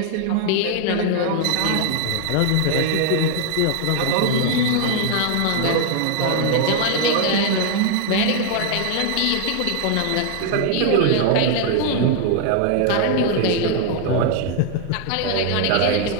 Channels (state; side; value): different; both; correlation 0.00